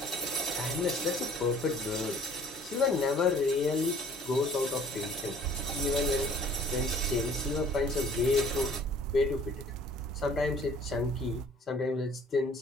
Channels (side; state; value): both; normal; correlation 0.54